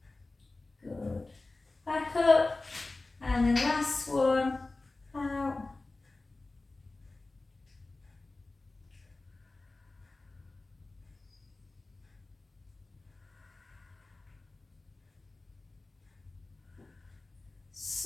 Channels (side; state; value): right; quieter; 3.2 dB